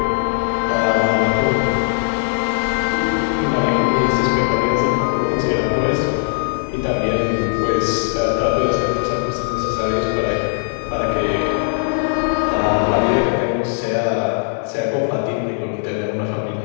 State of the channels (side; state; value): right; silent; digital silence